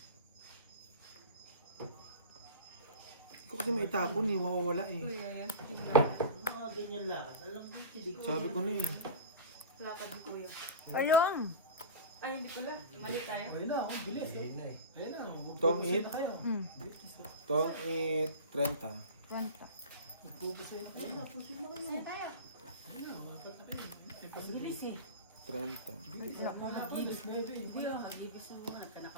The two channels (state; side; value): inverted; both; correlation -0.31